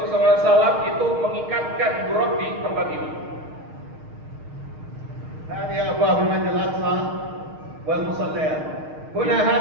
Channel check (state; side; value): late; left; 6.5 ms